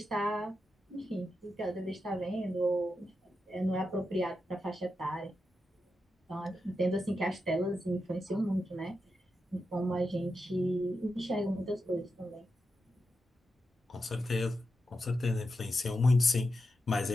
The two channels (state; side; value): normal; both; correlation 0.88